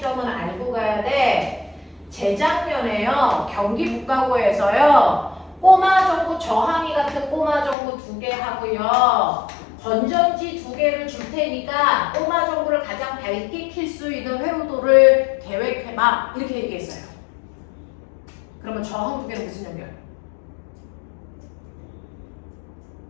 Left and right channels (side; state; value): right; drops out; at 7.8 s